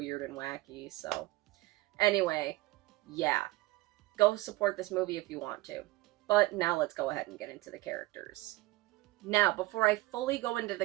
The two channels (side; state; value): left; quieter; 19.9 dB